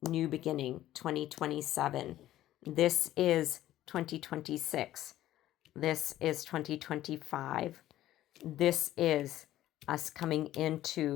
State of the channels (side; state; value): right; quieter; 13.9 dB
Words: new beginning, 2027. This is 2026. This is 2025. This is us coming